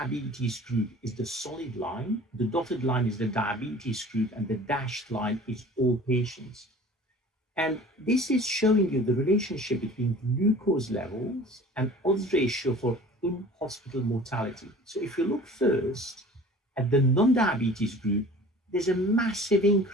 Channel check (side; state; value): both; normal; correlation 0.44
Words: group is the solid line, the dotted line is the diabetes group, and the dashed line is all patients. And this is showing you the relationship between glucose levels and odds ratio for in-hospital mortality. So if you look first at the non-diabetes group, there's a massive